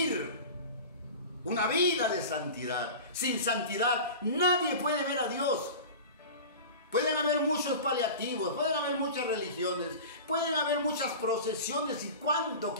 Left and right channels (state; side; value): inverted; both; correlation -0.34